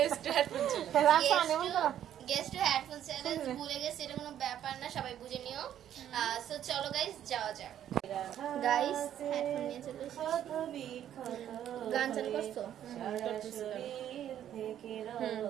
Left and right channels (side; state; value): left; quieter; 10.7 dB